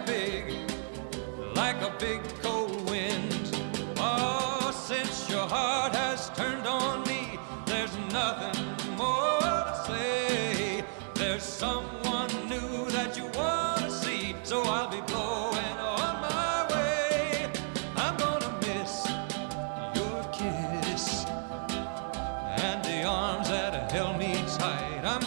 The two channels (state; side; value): silent; left; digital silence